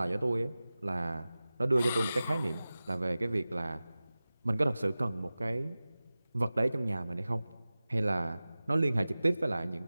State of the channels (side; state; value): both; inverted; correlation -0.97